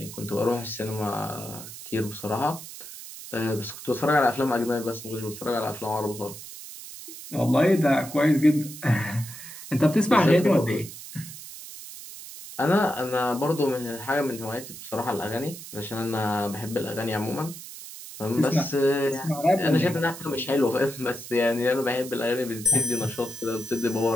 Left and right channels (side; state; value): right; noise; hiss, 13 dB below the sound